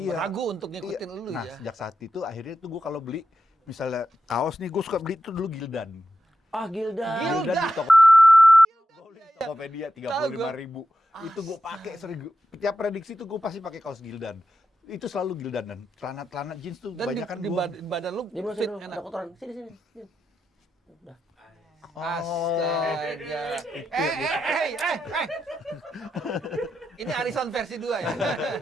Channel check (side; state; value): both; normal; correlation 0.88